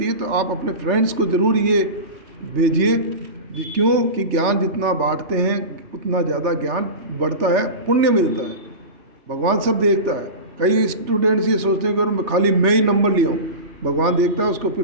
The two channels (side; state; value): left; late; 3.3 ms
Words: है तो आप अपने फ्रेंड्स को ज़रूर ये भेजिए। क्यों कि ज्ञान जितना बांटते हैं उतना ज़्यादा ज्ञान बढ़ता है, पुण्य मिलता है, भगवान सब देखता है। कई स्टूडेंट्स ये सोचते हैं कि मैं खाली मैं ही नंबर लिया हूँ, भगवान देखता है उसको, फिर